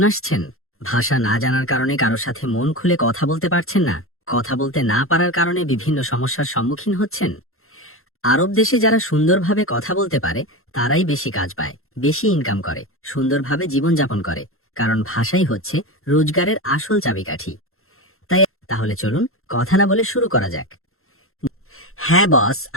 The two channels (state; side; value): late; right; 0.62 ms